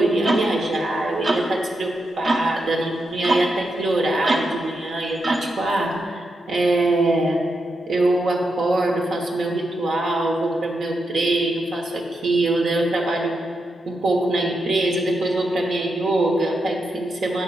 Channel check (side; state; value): both; normal; correlation 0.85